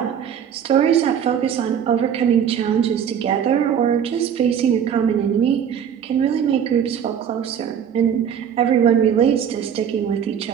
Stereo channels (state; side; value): quieter; left; 8.4 dB